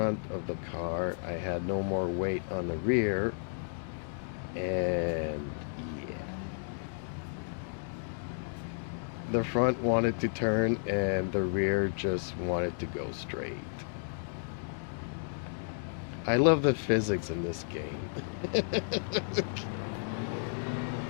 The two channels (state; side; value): silent; right; digital silence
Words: of the car, I had no more weight on the rear, and yeah, the front wanted to turn and the rear just wanted to go straight. I love the physics in this game.